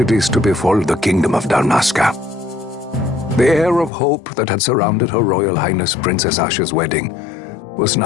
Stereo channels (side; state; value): right; drops out; at 3.9 s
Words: to befall the Kingdom of Dalmasca. The air of hope that had surrounded Her Royal Highness Princess Asha's wedding was